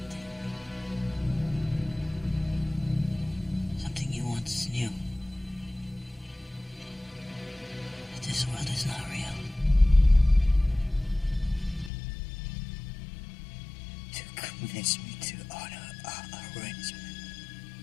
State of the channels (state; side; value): drops out; right; at 11.9 s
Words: Something you once knew. That this world is not real. To convince me to honor our arrangement.